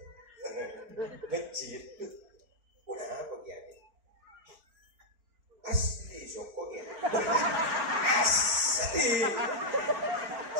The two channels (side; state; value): left; late; 4.4 ms